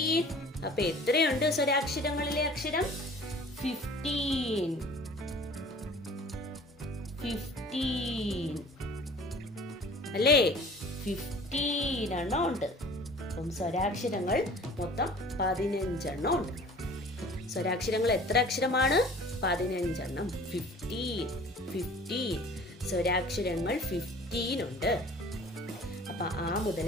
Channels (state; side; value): normal; both; correlation 0.47